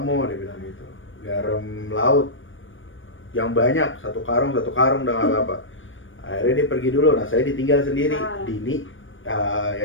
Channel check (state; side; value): late; right; 0.57 ms